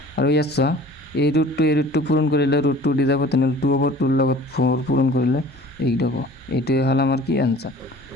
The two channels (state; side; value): normal; both; correlation 0.47